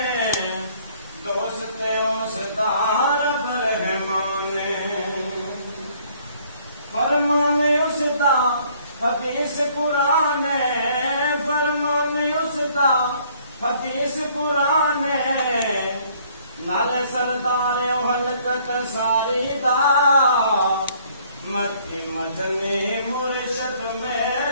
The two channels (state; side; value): inverted; both; correlation -0.61